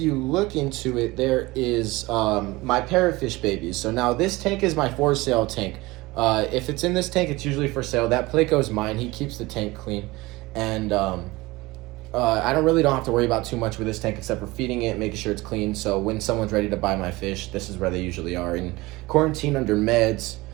look into it, there is my parrotfish babies. So now this tank is my for sale tank. If it's in this tank, it's usually for sale. That Placo's mine. He keeps the tank clean. And I don't have to worry about too much with this tank except for feeding it, making sure it's clean. So when someone's ready to buy my fish, this is where they usually are. In quarantine under meds,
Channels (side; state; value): left; quieter; 21.1 dB